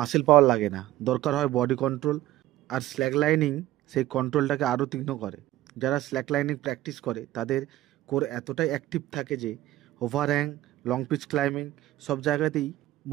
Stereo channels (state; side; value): quieter; left; 15.3 dB